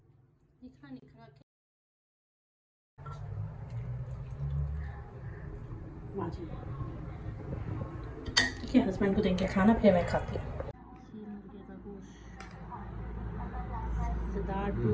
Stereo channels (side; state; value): both; identical; correlation 1.00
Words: हस्बैंड को देंगे खाना, फिर मैं खाती हूँ। मुर्गे का गोश्त